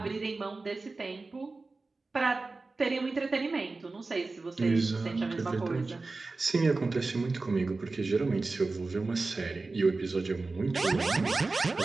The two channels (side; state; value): left; quieter; 3.6 dB